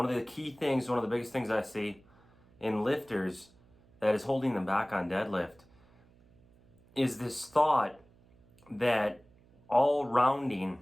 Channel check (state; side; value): noise; right; hum, 29 dB below the sound